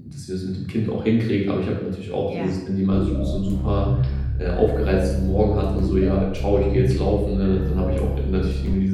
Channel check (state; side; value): identical; both; correlation 1.00